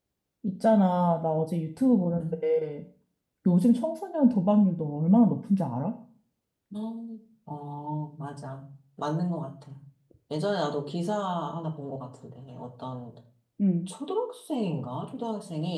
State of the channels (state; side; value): identical; both; correlation 1.00